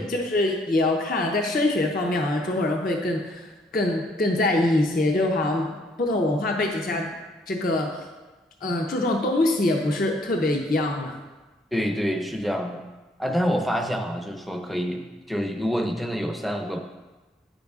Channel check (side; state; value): both; normal; correlation 0.67